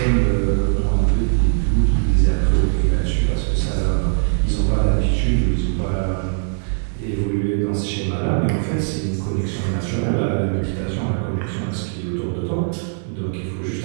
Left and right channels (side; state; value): left; silent; 56 dB below the other